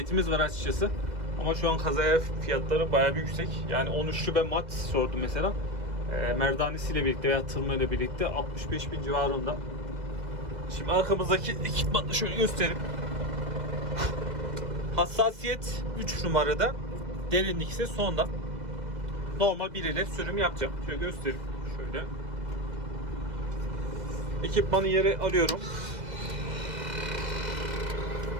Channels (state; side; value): late; left; 2.0 ms